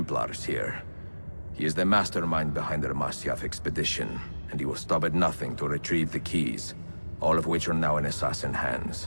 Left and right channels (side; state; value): both; inverted; correlation -1.00